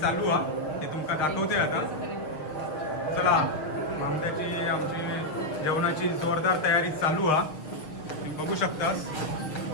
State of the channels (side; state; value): right; late; 6.7 ms